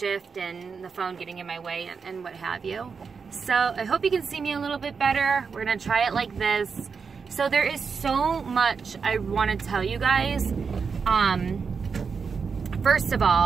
and the phone getting in my way and what have you. So I hope you can see me a little bit better. We're gonna try it like this. So there is so much I want to tell you guys. First of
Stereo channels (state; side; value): quieter; left; 5.6 dB